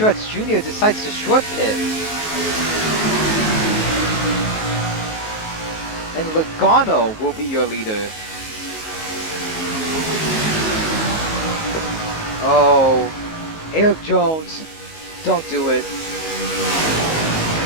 Jr. decides to short pit. And Logano will be your leader. Oh, Eric Jones, don't do it.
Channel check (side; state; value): right; late; 19 ms